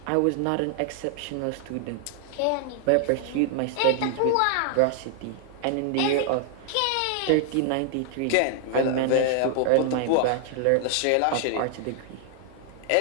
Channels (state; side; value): different; both; correlation 0.00